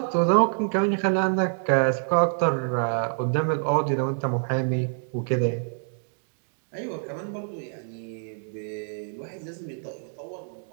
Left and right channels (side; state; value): left; silent; 61 dB below the other